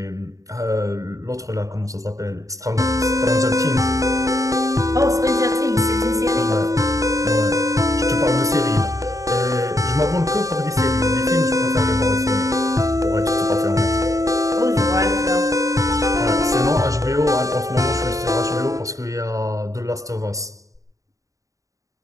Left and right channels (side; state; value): left; late; 0.16 ms